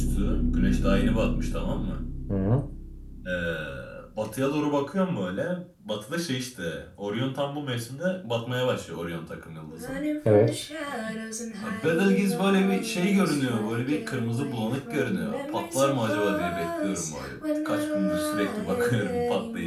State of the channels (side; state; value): both; identical; correlation 1.00